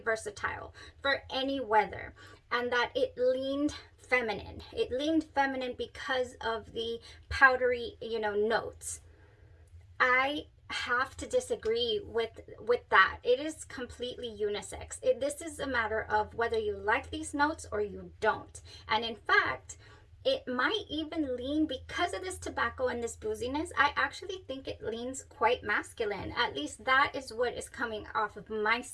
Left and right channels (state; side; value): identical; both; correlation 1.00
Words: for any weather, and that it leaned feminine. It leaned feminine because of the powdery, you know, notes. I have to disagree with that. It is completely unisex. This is a matter of whether you like these notes or you don't. And in fact, it might even lean, because of this tobacco and this booziness, I actually think it leans quite masculine. At least that is what is coming off of my